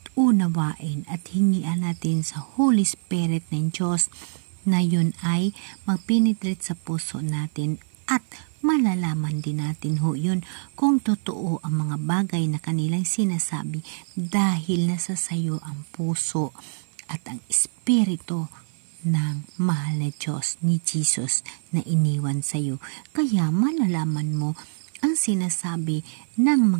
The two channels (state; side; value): silent; left; 59 dB below the other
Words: unawain at hingian natin sa Holy Spirit ng Diyos na yun ay magpenetrate sa puso natin at malalaman din natin ho yun kung totoo ang mga bagay na kanilang sinasabi, dahil nasa sayo ang puso at ang Espiritu ng mahal na Diyos ni Jesus na iniwan sa iyo. Kaya malalaman mo ang sinasabi ng